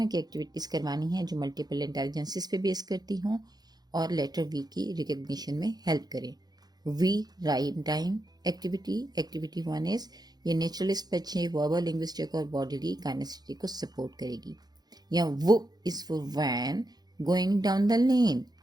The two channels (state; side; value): late; left; 0.19 ms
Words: کی ایکٹیویٹیز کروانی ہیں جو ملٹیپل انٹیلیجنسز پہ بیس کرتی ہوں اور لیٹر وی کی ریکگنیشن میں ہیلپ کریں. V rhyme time activity 1 is یہ نیچرلسٹ بچے وربل لنگوسٹک اور باڈیلی کائنیسٹی کو سپورٹ کرے گی. یا V is for van going down the lane.